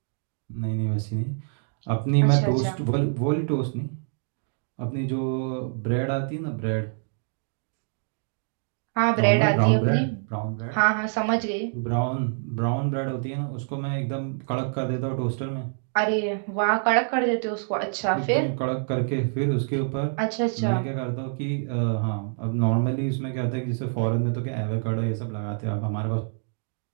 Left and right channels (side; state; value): left; silent; digital silence